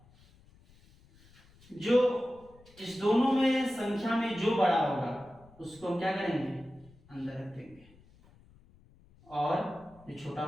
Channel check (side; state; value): left; noise; rumble, 27 dB below the sound